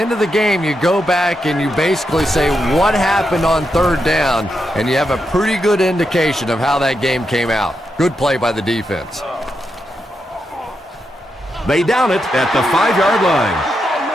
of the game, you go back and you basically say what happened on third down, and you have a pretty good indication of how that game came out. Good play by the defense. They down it at the 5-yard line.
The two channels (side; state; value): both; normal; correlation 0.85